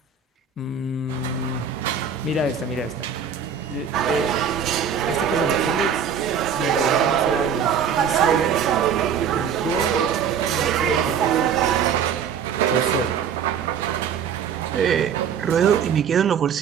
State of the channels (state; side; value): quieter; left; 7.4 dB